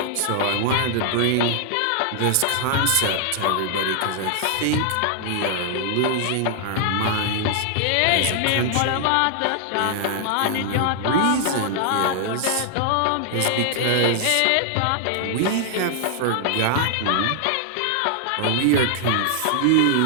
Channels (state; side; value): different; both; correlation 0.00